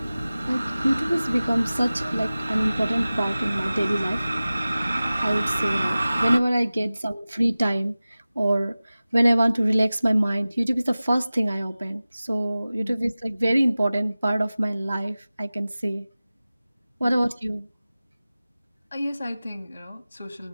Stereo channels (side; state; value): both; inverted; correlation -0.97